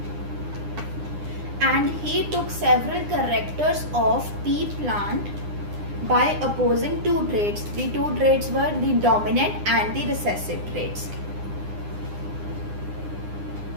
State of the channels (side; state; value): left; late; 9.8 ms